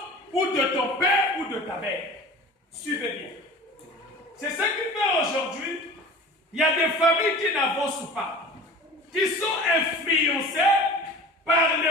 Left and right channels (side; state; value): both; normal; correlation 0.39